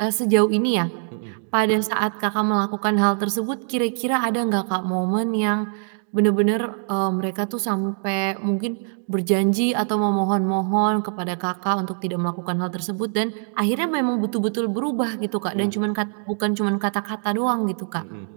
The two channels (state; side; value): silent; left; digital silence